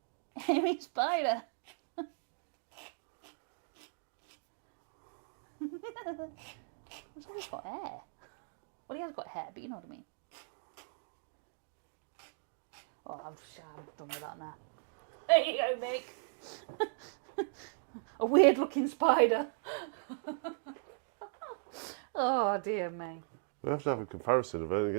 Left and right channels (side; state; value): left; silent; digital silence